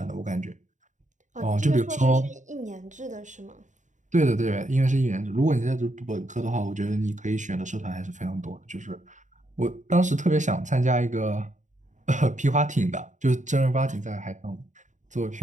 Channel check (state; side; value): late; left; 0.36 ms